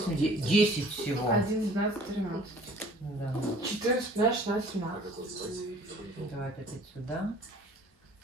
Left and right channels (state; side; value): normal; both; correlation 0.51